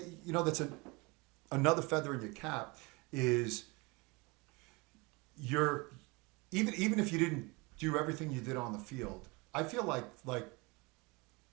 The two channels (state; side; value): quieter; left; 26.6 dB